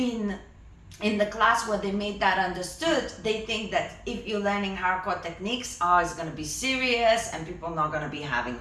in the class where they made that understood, they think that if you're learning hardcore techniques, it's going to be serious and people are not going to be having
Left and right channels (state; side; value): identical; both; correlation 1.00